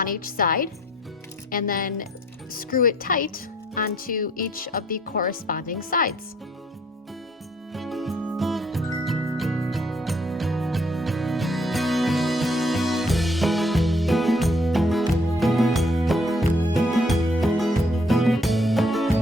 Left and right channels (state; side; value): normal; both; correlation 0.63